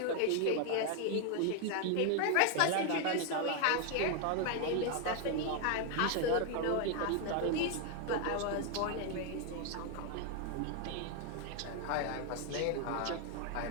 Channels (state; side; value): different; both; correlation 0.00